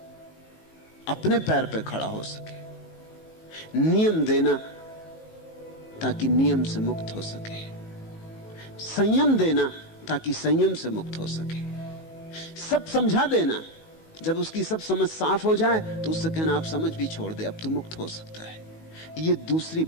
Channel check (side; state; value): right; late; 19 ms